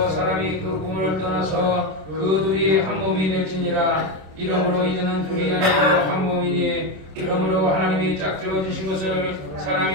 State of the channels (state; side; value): late; left; 26 ms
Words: 사람이 그 꿈을 떠나서 그 둘이 한 몸이 될지니라. 이러므로 이제는 둘이 아니고 한 몸이니 이러므로 하나님이 짝지어 주신 것을